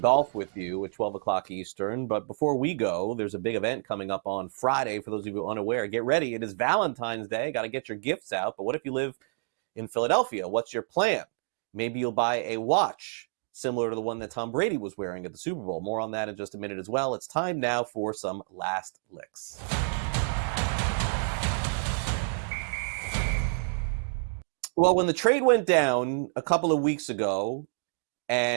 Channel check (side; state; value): left; silent; digital silence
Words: golf with you at 12 o'clock Eastern. But before we go, there's a big event coming up on Friday. For those of you unaware, get ready. It is Valentine's Day. Got to get your gifts out. But what if you live in Philadelphia? What's your plan? Maybe you'll buy a watch similar to the one that Tom Brady was wearing at the Super Bowl. More on that in just a minute as well. It's time now for some last licks. Well, when the trade went down a couple of weeks ago